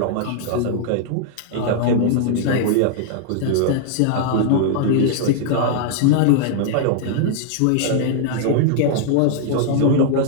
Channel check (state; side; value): different; both; correlation -0.01